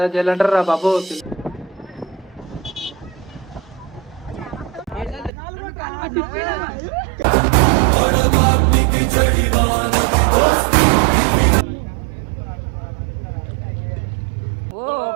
జైలు అంటారు రా బాబు.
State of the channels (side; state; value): left; drops out; at 5.3 s